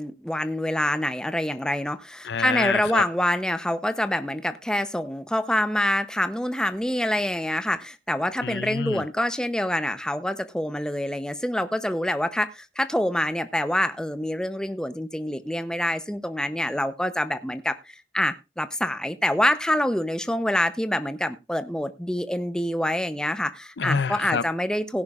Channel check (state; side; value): normal; both; correlation 0.87